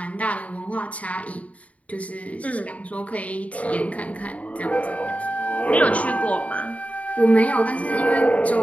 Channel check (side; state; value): right; late; 0.067 ms